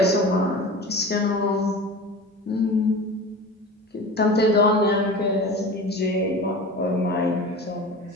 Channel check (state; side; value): normal; both; correlation 0.34